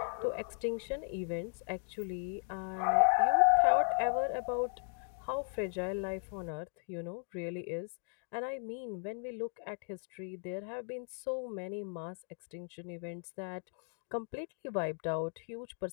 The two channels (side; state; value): right; silent; 54 dB below the other